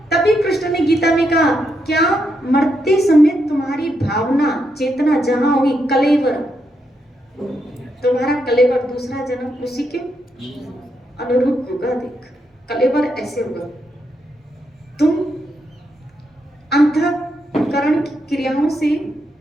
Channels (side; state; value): both; normal; correlation 0.81